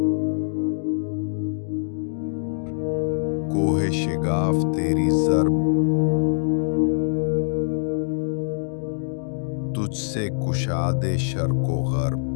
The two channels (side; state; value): right; silent; digital silence